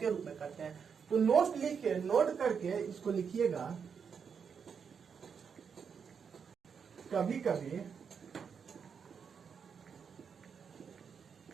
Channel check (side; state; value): left; quieter; 6.6 dB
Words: रूप में करते हैं। तो नोट करके इसको लिखिएगा। कभी कभी